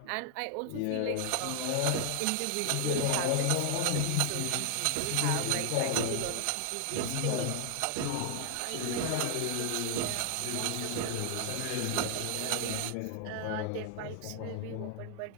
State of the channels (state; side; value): different; both; correlation 0.00